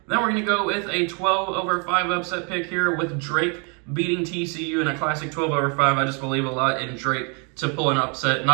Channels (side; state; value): left; quieter; 35.6 dB